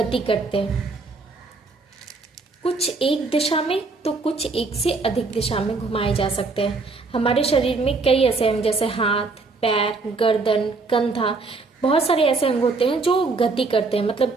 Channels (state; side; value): quieter; left; 3.9 dB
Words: करते हैं, कुछ एक दिशा में तो कुछ एक से अधिक दिशा में घुमाए जा सकते हैं। हमारे शरीर में कई ऐसे अंग जैसे हाथ, पैर, गर्दन, कंधा, बहुत सारे ऐसे अंग होते हैं जो गति करते हैं,